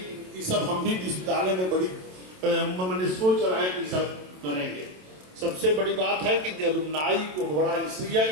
ये सब हम भी विश्वविद्यालय में बड़ी मैंने सोच रहा है कि सब करेंगे। सबसे बड़ी बात है कि अलुमनाई को बड़ा इसलिए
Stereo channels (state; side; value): late; left; 27 ms